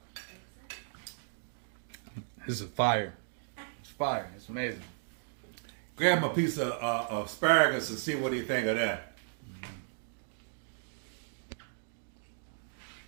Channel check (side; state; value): left; silent; digital silence